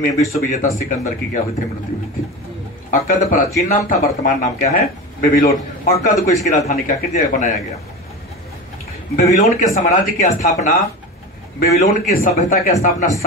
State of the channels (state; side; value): normal; both; correlation 0.27